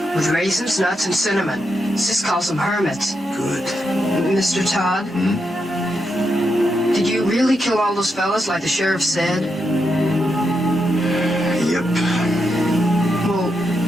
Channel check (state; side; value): normal; both; correlation 0.84